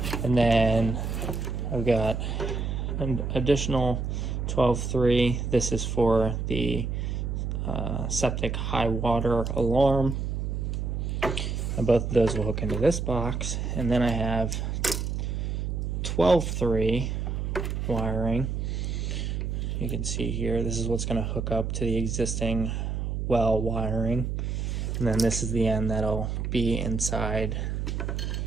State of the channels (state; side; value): noise; right; hum, 2 dB below the sound